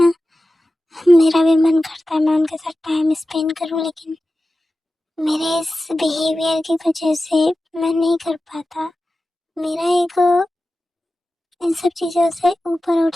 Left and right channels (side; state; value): both; normal; correlation 0.94